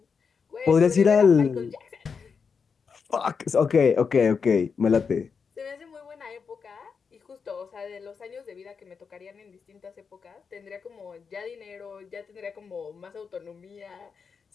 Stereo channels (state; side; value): quieter; right; 5.8 dB